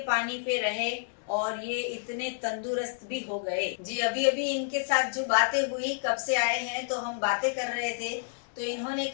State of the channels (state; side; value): silent; right; digital silence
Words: पानी पे रहे और ये इतने तंदुरुस्त भी हो गए। जी, अभी अभी इनके साथ जो बातें हुई, कब से आए हैं तो हम बातें कर रहे थे, तो इन्होंने